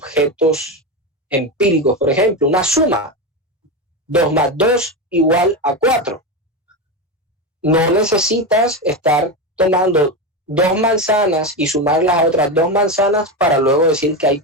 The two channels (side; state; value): both; normal; correlation 0.15